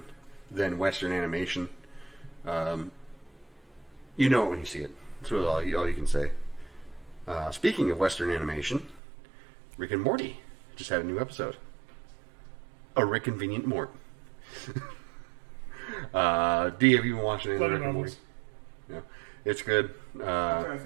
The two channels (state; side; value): drops out; left; at 9.0 s